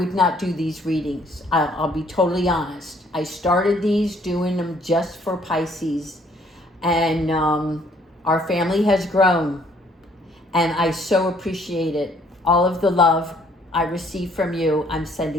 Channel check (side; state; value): both; normal; correlation 0.63